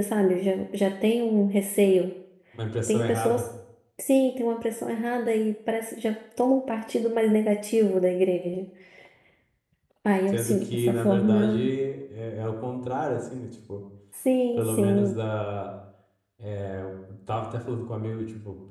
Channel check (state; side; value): identical; both; correlation 1.00